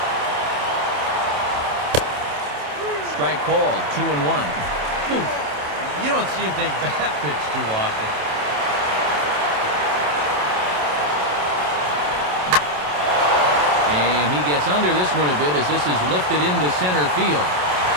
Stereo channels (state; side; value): late; left; 27 ms